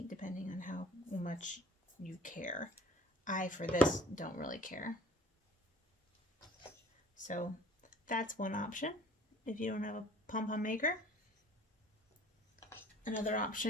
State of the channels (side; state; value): both; normal; correlation 0.50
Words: depending on how much you care. I, for this, don't really care. So that's one option if you don't have a Pompom Maker. Another